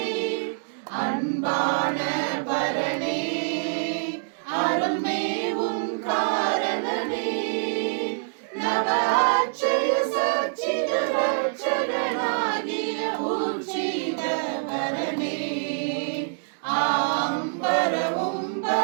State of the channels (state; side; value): silent; left; 61 dB below the other